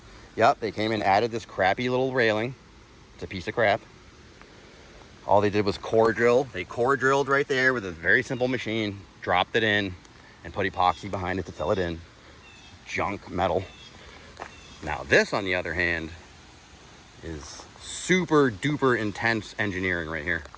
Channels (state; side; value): identical; both; correlation 1.00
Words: Yep, they came and added this crappy little railing. It's a piece of crap. All they did was core drill. They core drilled right there with a very simple machine, dropped it in, and put epoxy behind it to fill it in. Junk metal. Now this, on the other hand, is super duper intense engineering right here.